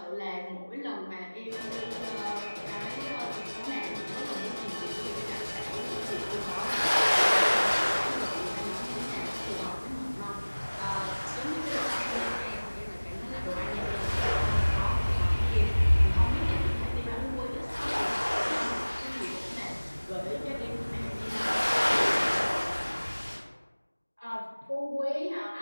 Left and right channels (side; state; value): both; inverted; correlation -1.00